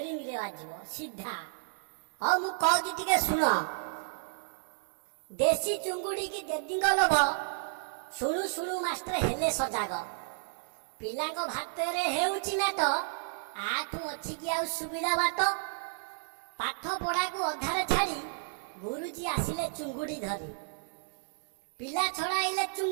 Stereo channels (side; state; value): left; silent; digital silence